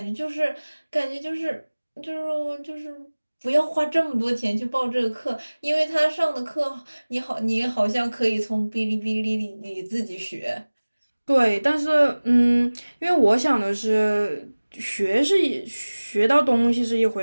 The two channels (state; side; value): inverted; both; correlation -1.00